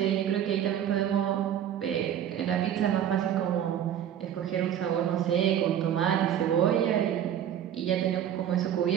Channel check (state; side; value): quieter; left; 10.1 dB